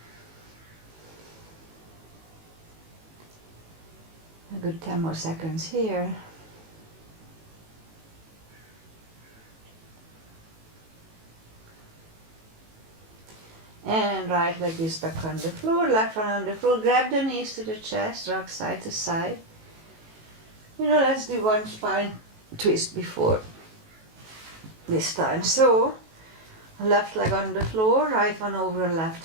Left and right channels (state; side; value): late; left; 18 ms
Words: A good 10 more seconds here. And right leg is back on the floor, left one on the floor. Grab the knees to the chest, rock side to side. Let's do one spine twist before this time. So, left leg on the floor, right one over